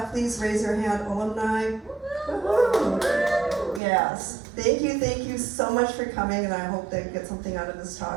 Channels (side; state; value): left; drops out; at 3.8 s